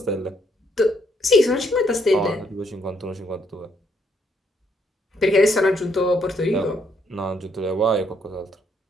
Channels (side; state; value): both; normal; correlation 0.72